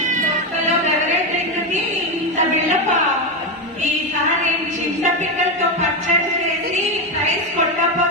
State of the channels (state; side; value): normal; both; correlation 0.11